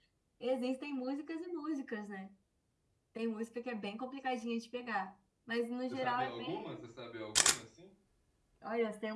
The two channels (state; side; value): identical; both; correlation 1.00